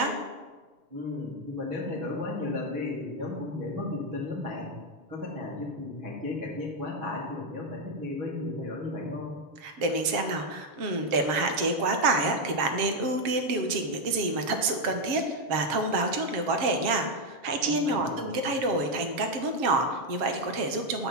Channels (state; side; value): late; left; 7.3 ms